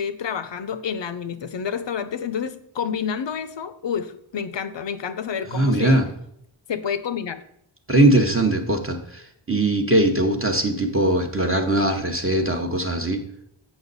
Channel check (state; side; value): normal; both; correlation 0.17